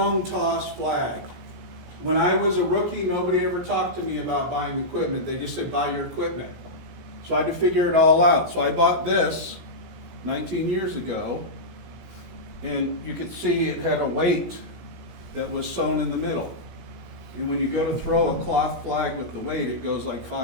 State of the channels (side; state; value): left; late; 17 ms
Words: toss flag. When I was a rookie, nobody ever talked to me about buying equipment. They just said, buy your equipment. So I had to figure it all out. So I bought this 19 years ago, and you could see it had a weight that was sewn in the middle. And when you go to throw a cloth flag with the weight, it goes like